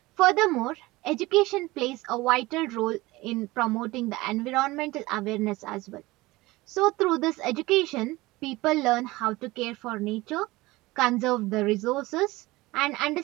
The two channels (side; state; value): left; quieter; 20.3 dB